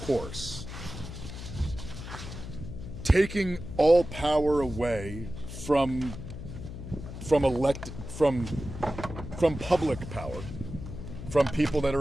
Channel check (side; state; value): left; noise; hum, 10 dB below the sound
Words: taking all power away from public power, from people that